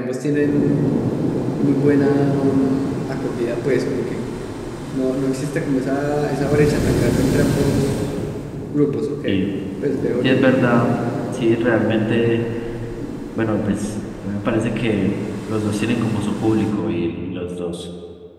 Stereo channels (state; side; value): identical; both; correlation 1.00